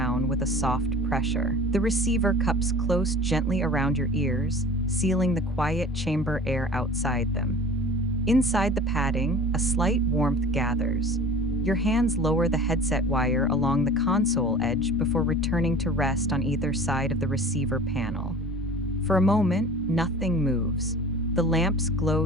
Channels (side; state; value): both; normal; correlation 0.42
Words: with a soft pressure. The receiver cups close gently around your ears, sealing the quiet chamber air outside them. Inside the padding, a slight warmth gathers. Your hands lower the headset wire along the console edge before returning to rest on either side of the receiver panel. For a moment, nothing moves. The lamps